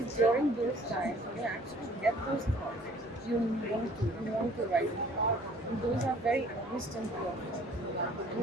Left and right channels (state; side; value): normal; both; correlation 0.54